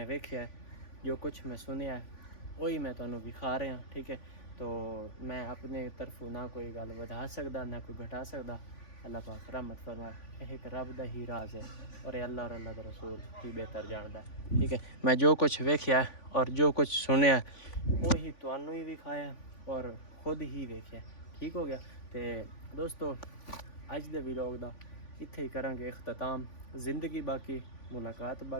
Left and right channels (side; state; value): right; late; 3.5 ms